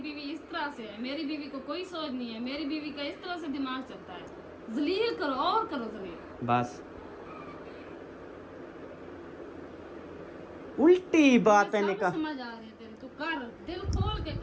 इस तरह से है, मेरी बीवी को कोई सोच नहीं है, मेरी बीवी का इस तरह से दिमाग चलता है। जलील करो और करो जलील। बस उल्टी बातें सब निकाल। समझ आ रही है तेरी, तू कर, दिल खोल के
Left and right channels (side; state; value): both; identical; correlation 1.00